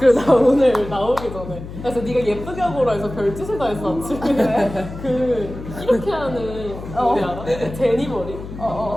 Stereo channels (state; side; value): noise; left; hum, 11 dB below the sound